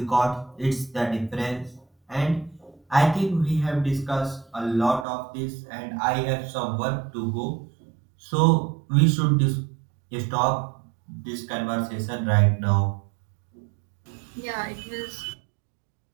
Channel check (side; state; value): left; drops out; at 5.1 s